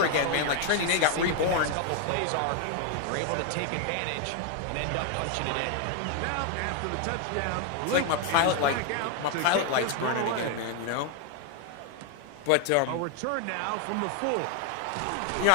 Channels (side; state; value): both; different; correlation 0.01